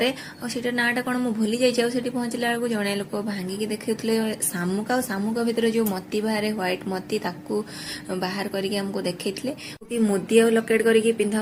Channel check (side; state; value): both; identical; correlation 1.00